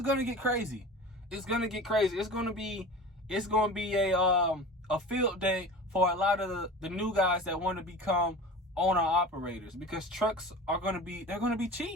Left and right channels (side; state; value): both; normal; correlation 0.35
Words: to get crazy. It's going to get crazy. It's going to be a field day for a lot of the new guys that want to become owner operators, because trucks are going to be